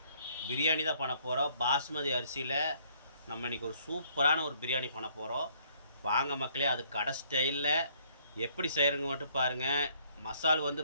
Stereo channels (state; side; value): inverted; both; correlation -0.64